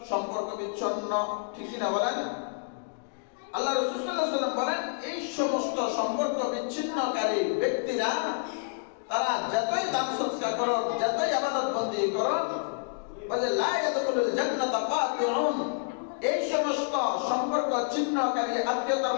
সম্পর্ক বিচ্ছিন্ন, ঠিক কি না বলেন? আল্লাহ রাসূল সাল্লাল্লাহু আলাইহি ওয়াসাল্লাম বলেন এই সমস্ত সম্পর্ক বিচ্ছিন্নকারী ব্যক্তিরা তারা যতই দান সদকা করো, যতই ইবাদত বন্দি করো, বলে লা ইয়াদখুলুল জান্নাতা কাতিউন, এই সমস্ত সম্পর্ক ছিন্নকারী, আত্মীয়তার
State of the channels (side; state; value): right; silent; digital silence